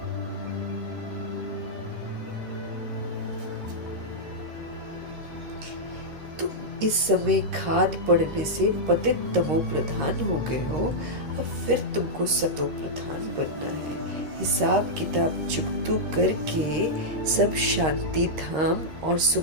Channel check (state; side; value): late; left; 13 ms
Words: तुम इस समय खाद पड़ने से पतित तमो प्रधान हो गए हो, अब फिर तुमको सतो प्रधान बनना है। हिसाब किताब चुकतू करके सब शांति धाम और